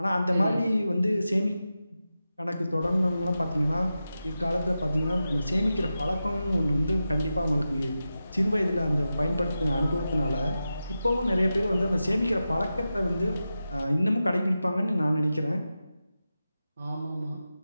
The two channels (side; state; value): both; inverted; correlation -0.92